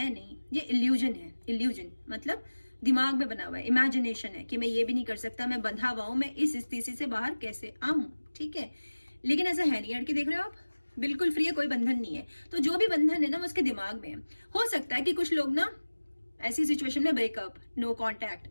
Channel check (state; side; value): inverted; both; correlation -1.00